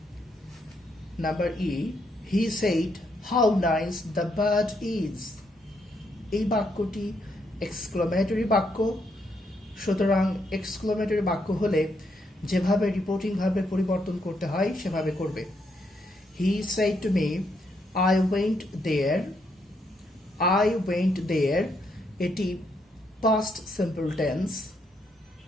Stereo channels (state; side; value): normal; both; correlation 0.76